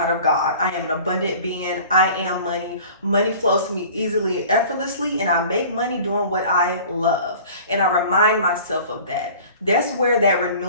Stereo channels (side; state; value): both; inverted; correlation -0.45